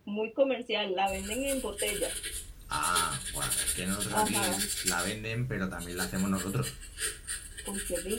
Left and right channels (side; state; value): both; identical; correlation 1.00